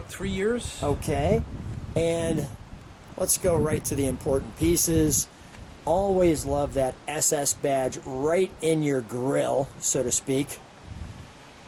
3 years. Okay. And let's go right to the important pieces. Always love that SS badge right in your grill, so to speak.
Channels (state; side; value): identical; both; correlation 1.00